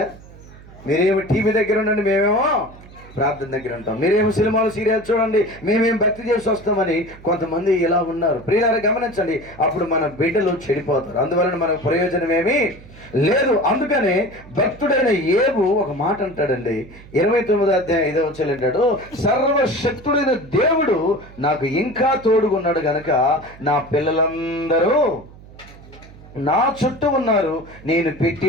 మీరేమో టీవీ దగ్గర ఉండండి, మేమేమో ప్రార్థన దగ్గర ఉంటాం, మీరేమో సినిమాలు సీరియల్ చూడండి, మేమేం భక్తి చేసి వస్తామని కొంతమంది ఇలా ఉన్నారు. ప్రియులారా గమనించండి, అప్పుడు మన బిడ్డలు చెడిపోతారు. అందువలన మనకు ప్రయోజనం ఏమీ లేదు. అందుకనే భక్తుడైన యేబు ఒక మాట అంటాడండి, 29వ అధ్యాయం 5వ వచనం అంటాడు, సర్వశక్తుడైన దేవుడు నాకు ఇంకా తోడుగున్నాడు గనక నా పిల్లలందరూ నా చుట్టూ ఉన్నారు, నేను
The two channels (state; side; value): noise; right; hum, 20 dB below the sound